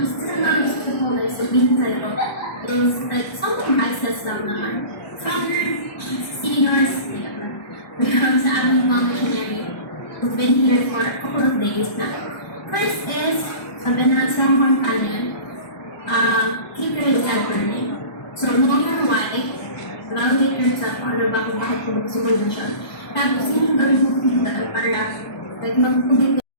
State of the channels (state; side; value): late; right; 1.1 ms